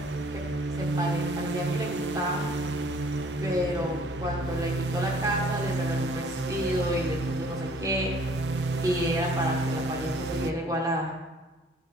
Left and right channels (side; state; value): both; normal; correlation 0.57